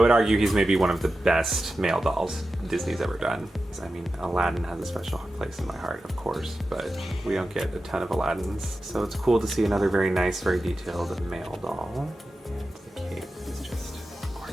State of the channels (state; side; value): normal; both; correlation 0.92